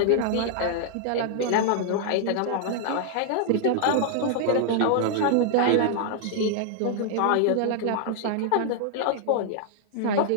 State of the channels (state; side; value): different; both; correlation -0.01